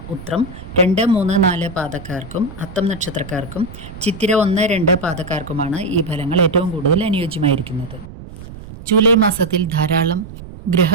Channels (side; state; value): right; noise; rumble, 14 dB below the sound